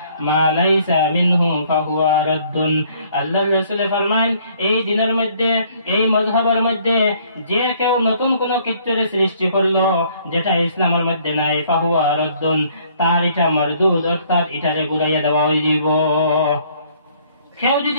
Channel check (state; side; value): inverted; both; correlation -0.62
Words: মা লাইসা মিনহু ফাহুয়া রাদ্দুন। আল্লাহর রাসূল ফরমান, এই দিনের মধ্যে এই মযহবের মধ্যে যে কেউ নতুন কোন কিছুর সৃষ্টি করলো যেটা ইসলামের মধ্যে নাই, ফাহুয়া রাদ্দুন, তার এটা মরদুদ, অর্থাৎ এটারে ঘুরাইয়া দেওয়া হইব। কেউ